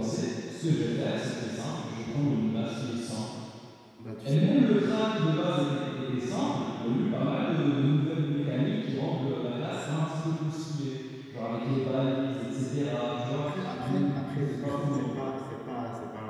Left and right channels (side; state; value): both; identical; correlation 1.00